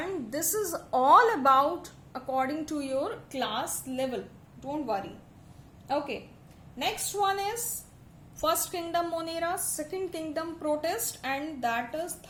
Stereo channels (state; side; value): identical; both; correlation 1.00